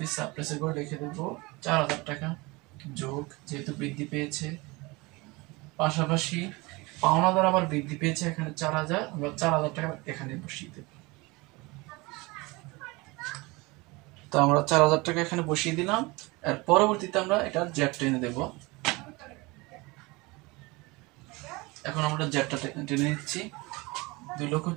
সাপ্লাইসের করে লিখে দেব 4,000 টাকা যোগ, যেহেতু বৃদ্ধি পেয়েছে। পাশাপাশি পাওনাদার আবার বৃদ্ধি পেয়েছে, এখানে 4,000, আমরা 4,000 টাকা এখানে বসিয়ে দেব। তো আমরা 4,000 টাকা এখানে বসিয়ে দিলাম। আর পরবর্তীতে আমরা এটা জ্যাট টেনে দেব। এখন আমরা জ্যাটটা টেনে নিচ্ছি।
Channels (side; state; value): left; quieter; 24.3 dB